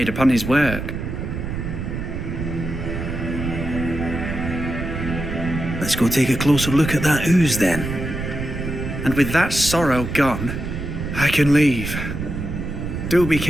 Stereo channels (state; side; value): noise; right; rumble, 5 dB below the sound